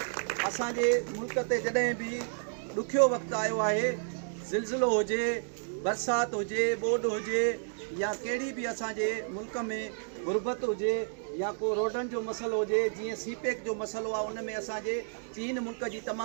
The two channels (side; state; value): left; silent; digital silence